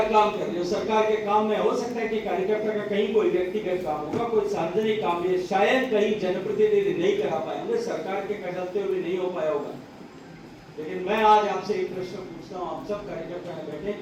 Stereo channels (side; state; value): both; identical; correlation 1.00